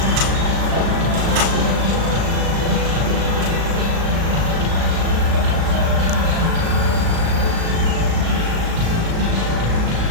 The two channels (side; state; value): left; late; 37 ms